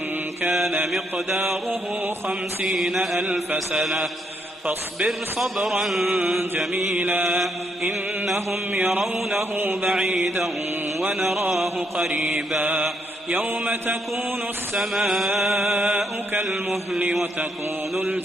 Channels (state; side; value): normal; both; correlation 0.75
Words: كان مقداره 50,000 سنة فاصبر صبرا جميلا إنهم يرونه بعيدا ونراه قريبا يوم تكون السماء كالمهل وتكون